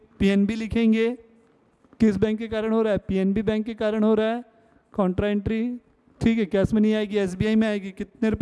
पीएनबी लिखेंगे, किस बैंक के कारण हो रहा है, पीएनबी बैंक के कारण हो रहा है, कॉन्ट्रा एंट्री, ठीक है, कैश में नहीं आएगी, एसबीआई में आएगी, कितने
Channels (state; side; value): identical; both; correlation 1.00